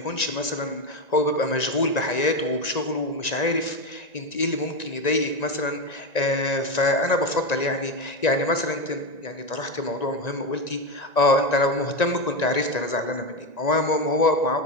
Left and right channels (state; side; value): late; right; 1.9 ms